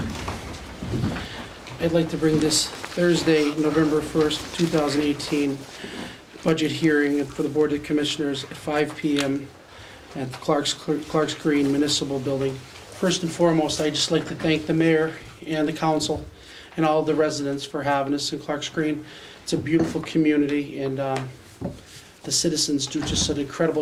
I'd like to bring this Thursday, November 1st, 2018, budget hearing for the Board of Commissioners at 5 p.m. at the Clark's Green Municipal Building. First and foremost, I'd just like to thank the mayor and the council and all the residents for having us in Clark's Green. It's a beautiful community, and the citizens do just an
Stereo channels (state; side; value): identical; both; correlation 1.00